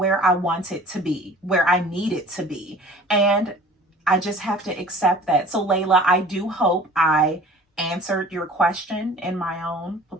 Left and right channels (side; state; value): both; normal; correlation 0.46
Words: I wanted to be, where I needed to be. And I just have to accept that. So Layla, I do hope I answered your question in my own